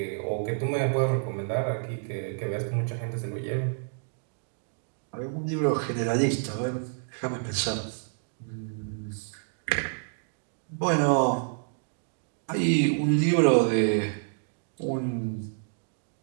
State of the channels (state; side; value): silent; left; digital silence